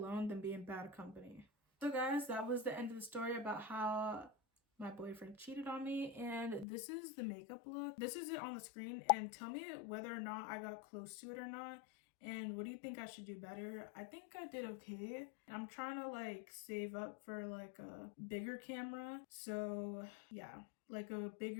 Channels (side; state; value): right; drops out; at 6.7 s